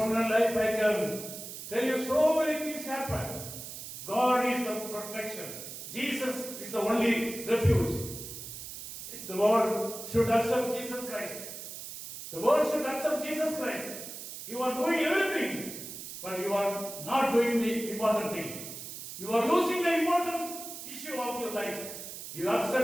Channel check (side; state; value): right; noise; hiss, 10 dB below the sound